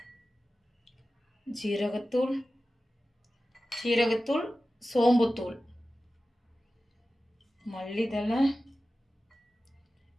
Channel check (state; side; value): normal; both; correlation 0.95